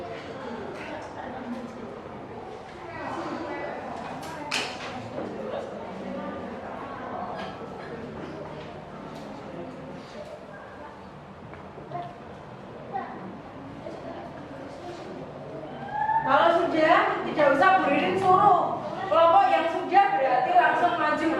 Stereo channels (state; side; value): identical; both; correlation 1.00